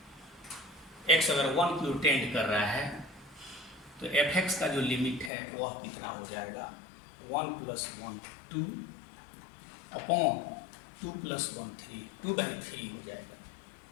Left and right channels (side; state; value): right; drops out; at 5.3 s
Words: x अगर 1 की ओर टेंड कर रहा है तो fx का जो लिमिट है वह कितना हो जाएगा 1 प्लस 1 2 अपॉन 2 प्लस 1 3 2/3 हो जाएगा।